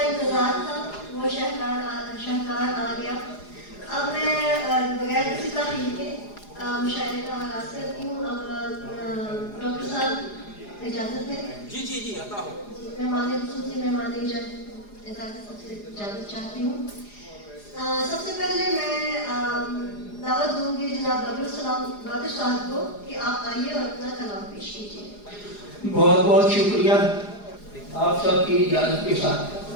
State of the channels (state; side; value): late; right; 4.9 ms